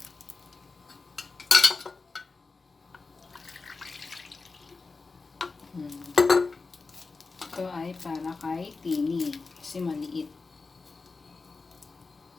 Ito ay para kay Tini kasi maliit.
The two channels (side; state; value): right; quieter; 4.1 dB